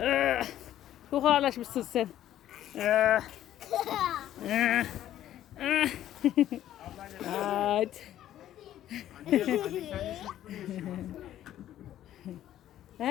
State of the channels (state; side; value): quieter; right; 12.2 dB